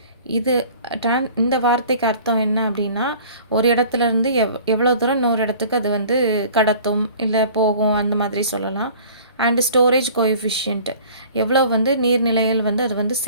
இது இந்த வார்த்தைக்கு அர்த்தம் என்ன அப்படின்னா ஒரு இடத்துலேருந்து எவ்வளோ தூரம் இன்னொரு இடத்துக்கு அது வந்து கடத்தும் இல்லை போகும், அந்த மாதிரி சொல்லலாம். அண்டு ஸ்டோரேஜ் கோஎஃபிஷியன்ட், எவ்வளோ வந்து நீர்நிலைகள் வந்து அது வந்து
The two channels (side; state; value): both; inverted; correlation -0.48